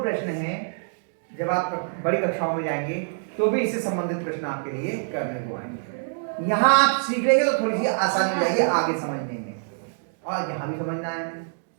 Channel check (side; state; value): left; silent; digital silence